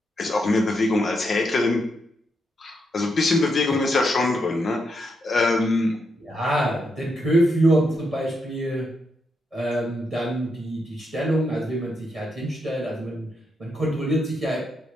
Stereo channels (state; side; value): normal; both; correlation 0.81